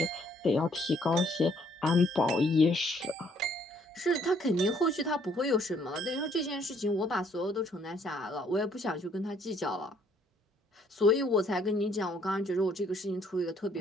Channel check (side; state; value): both; normal; correlation 0.65